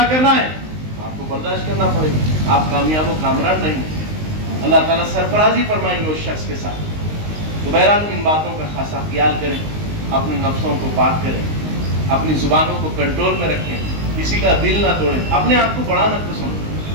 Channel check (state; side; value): late; left; 19 ms